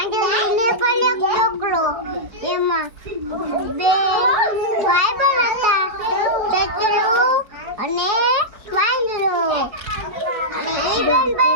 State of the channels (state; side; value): late; left; 4.8 ms